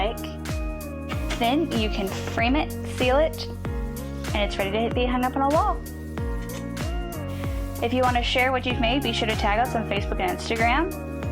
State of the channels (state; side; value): identical; both; correlation 1.00